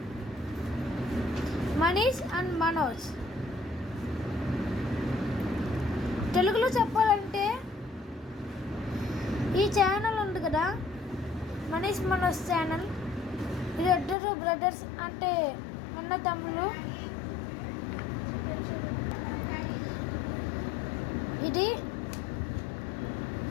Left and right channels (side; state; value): right; drops out; at 14.2 s